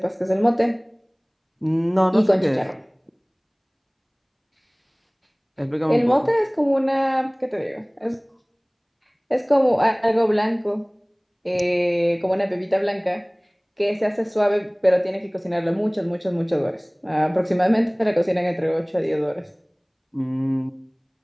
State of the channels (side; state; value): both; identical; correlation 1.00